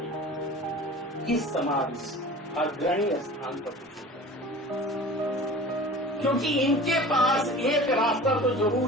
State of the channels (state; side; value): normal; both; correlation 0.40